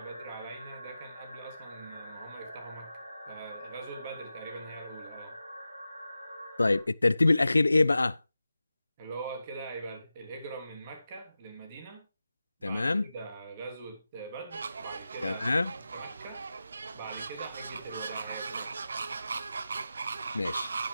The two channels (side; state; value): both; inverted; correlation -0.93